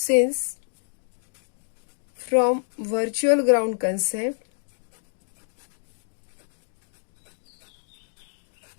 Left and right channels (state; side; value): silent; right; digital silence